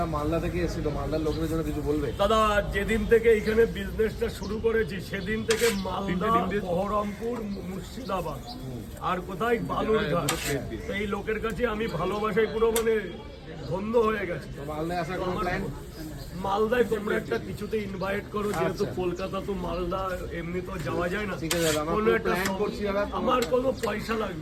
মালদা থেকে এসেছিল, মালদার লোকের জন্য কিছু বলবে? দাদা যেদিন থেকে এখানে বিজনেসটা শুরু করেছি সেদিন থেকে মালদা, বহরমপুর, মুর্শিদাবাদ আর কোথায় বালুরঘাট, এই লোকের কাছে আমি ভালোবাসায় পুরো মানে ধন্য হয়ে গেছে। মালদায় আসার কোনো প্ল্যান? মালদায় তোমরা একটা কিছুতে ইনভাইট করো, যেহেতু কলকাতা তো মালদা এমনি তো যাওয়া যায় না। ঠিক আছে দাদা, আমরা কোনো একটা প্ল্যান করছি দাদা। আমার কোনো পয়সা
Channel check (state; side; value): identical; both; correlation 1.00